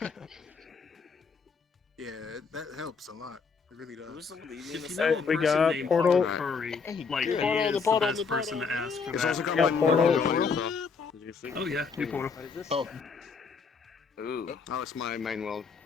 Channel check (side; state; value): right; quieter; 5.3 dB